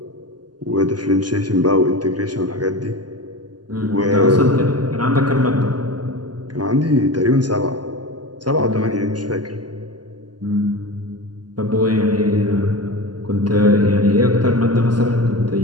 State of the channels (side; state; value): left; late; 0.70 ms